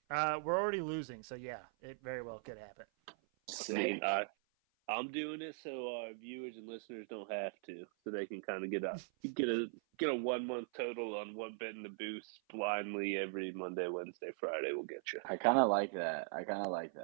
We're already losing, so yeah, it very well could happen. I mean, I'm doing it so our viewers and listeners don't have to, so they can kind of get a 1 month total on what betting the boost blindly every Monday, Wednesday, Friday will get you. I kind of like that.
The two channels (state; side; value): silent; left; 51 dB below the other